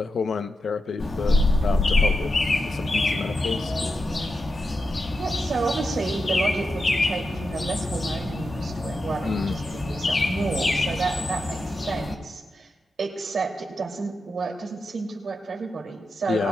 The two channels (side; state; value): both; normal; correlation 0.88